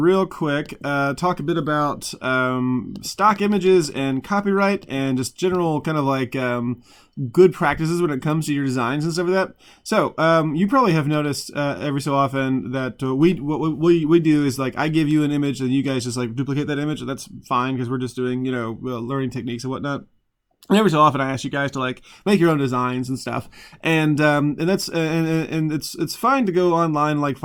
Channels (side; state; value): both; identical; correlation 1.00